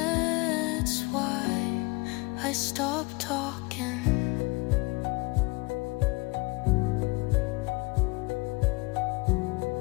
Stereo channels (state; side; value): quieter; right; 26.2 dB